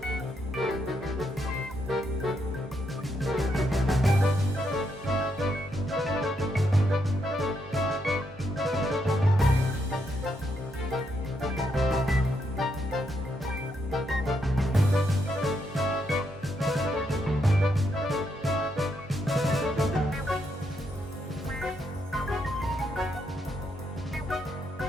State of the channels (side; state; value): both; normal; correlation 0.78